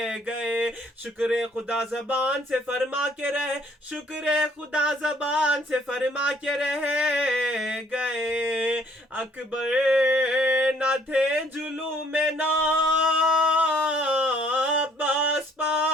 گئے۔ شکر خدا زبان سے فرما کے رہے، شکر خدا زبان سے فرما کے رہ گئے۔ اکبر نہ تھے جلوم نا عباس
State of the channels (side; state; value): both; normal; correlation 0.61